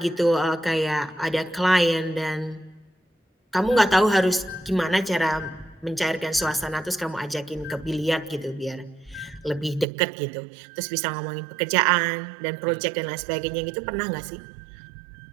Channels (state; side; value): drops out; left; at 9.9 s